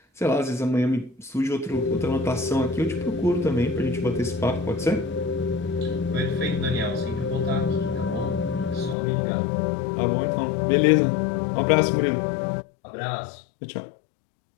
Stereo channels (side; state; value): right; drops out; at 9.0 s